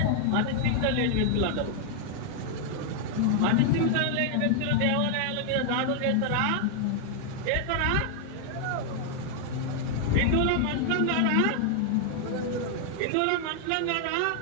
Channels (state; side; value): different; both; correlation 0.00